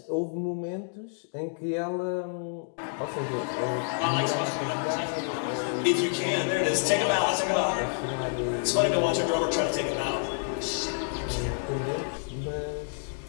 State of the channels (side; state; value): right; silent; digital silence